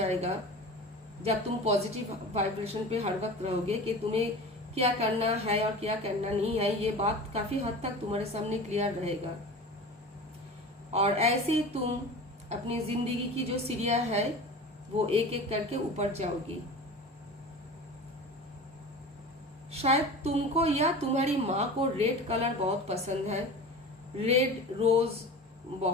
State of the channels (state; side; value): normal; both; correlation 0.35